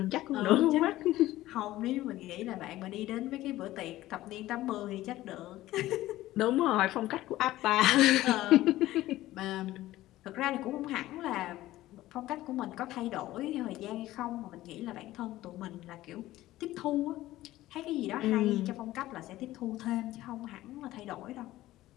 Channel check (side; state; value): right; quieter; 15.8 dB